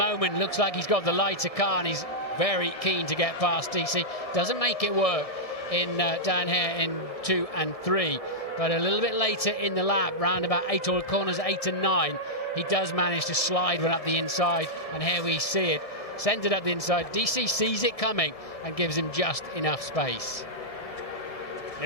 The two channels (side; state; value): right; late; 1.7 ms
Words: looks like he's got the lighter car and he's very keen to get past DC. Doesn't make it work in down here in 2 and 3. But a little bit later in the lap, round about 8 or corners 8 and 9, he does manage to slide one up the inside. And here we see it. Sends it up the inside. DC sees it coming and gives him just enough space.